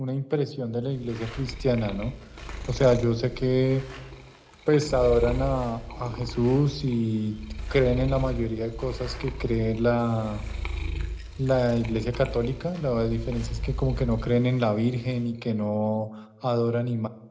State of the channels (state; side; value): identical; both; correlation 1.00